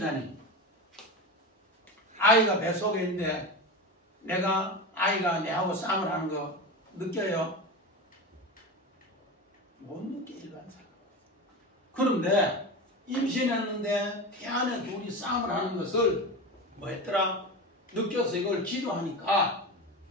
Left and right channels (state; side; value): normal; both; correlation 0.24